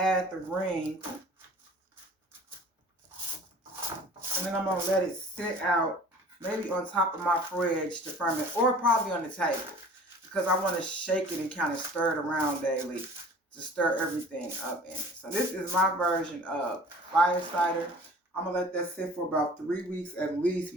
the ring, and then I'm going to let it sit out, maybe on top of my fridge to ferment, or probably on the table, because I want to shake it and kind of stir it around daily to stir everything up in it. So this is my version of fire cider. I'm going to let that sit for about 3 weeks at least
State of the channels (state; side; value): normal; both; correlation 0.45